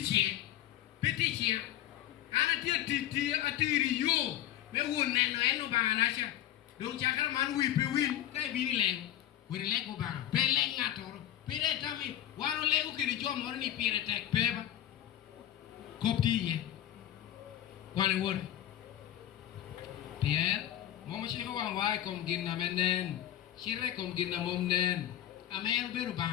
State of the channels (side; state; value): right; quieter; 12.1 dB